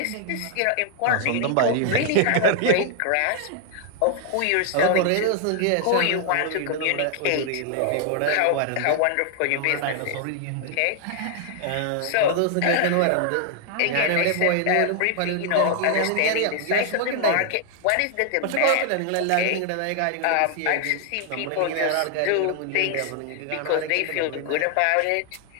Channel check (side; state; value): both; different; correlation 0.00